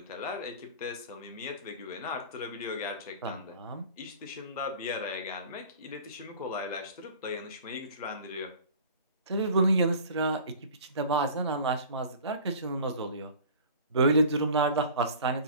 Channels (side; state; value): both; inverted; correlation -0.43